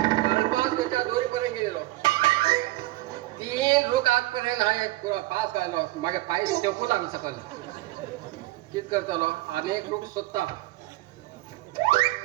त्याच्या दोरीपर्यंत गेलेलो 3 लोक आजपर्यंत आहे पुरा पास घालो मागे पाय टेकू लागलं सकाळी कित करतलो अनेक लोक स्वतः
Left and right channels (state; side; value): quieter; left; 18.5 dB